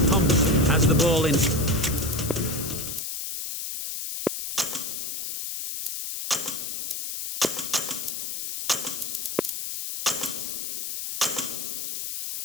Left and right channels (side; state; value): left; noise; hiss, 5 dB below the sound